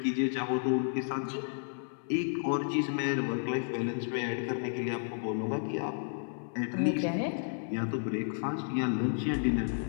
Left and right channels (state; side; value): silent; right; 56 dB below the other